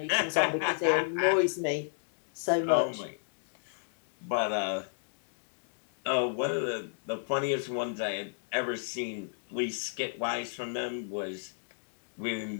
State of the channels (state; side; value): silent; right; digital silence